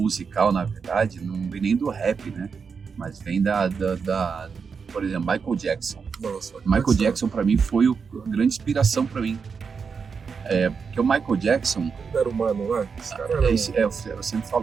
na verdade, não vem nem do rap, né? Mas vem por exemplo, Michael Jackson. Nossa, Michael Jackson pra mim foi a grande inspiração pra mim. Porque o Michael Jackson... Ele era humano, né? Esse cara era eu sempre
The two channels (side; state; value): left; quieter; 5.7 dB